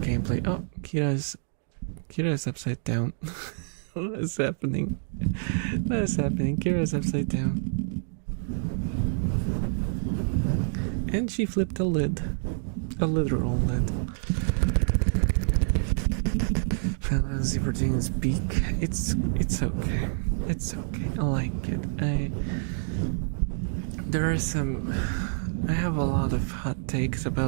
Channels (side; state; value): left; silent; digital silence